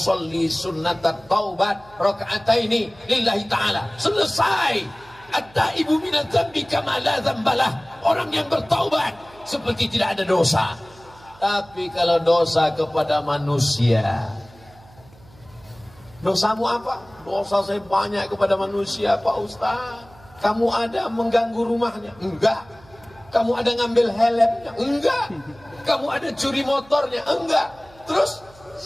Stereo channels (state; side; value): noise; right; hum, 25 dB below the sound